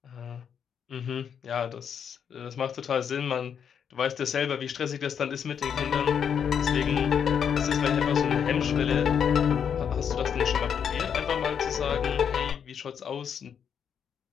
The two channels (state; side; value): quieter; right; 7.7 dB